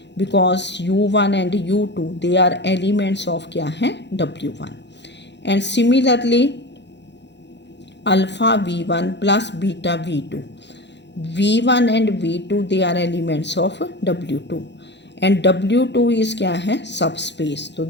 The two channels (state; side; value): late; right; 0.51 ms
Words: because u1 and u2 they are elements of क्या हैं, W1। And similarly alpha v1 plus beta v2, v1 and v2 they are elements of w2 and w2 is क्या है, सब space, तो